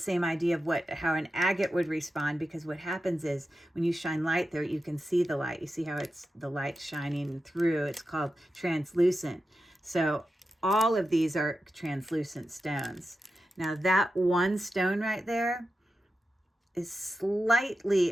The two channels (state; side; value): normal; both; correlation 0.90